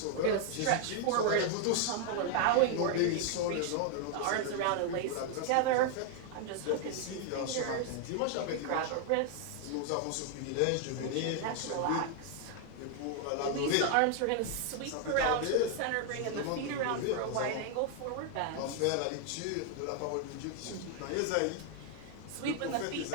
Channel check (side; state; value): both; different; correlation 0.00